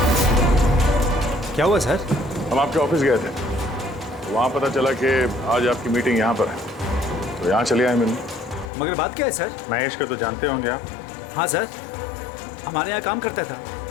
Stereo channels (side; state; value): right; drops out; at 8.7 s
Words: क्या हुआ सर? हम आपके ऑफिस गए थे, वहाँ पता चला कि आज आपकी मीटिंग यहाँ पर है, तो यहाँ चले आए मिलने। मगर बात क्या है सर? महेश को तो जानते होंगे आप? हाँ सर, हमारे यहाँ काम करता था,